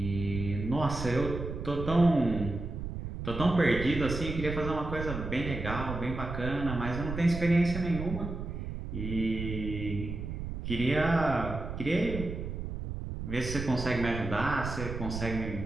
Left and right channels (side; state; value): right; noise; rumble, 6 dB below the sound